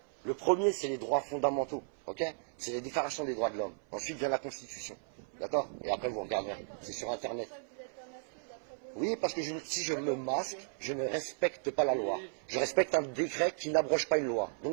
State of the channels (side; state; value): left; silent; 54 dB below the other